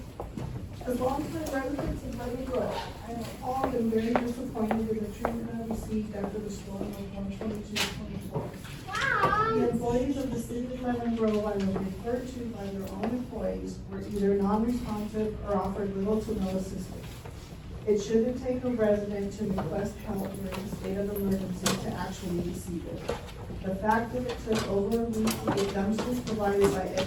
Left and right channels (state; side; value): identical; both; correlation 1.00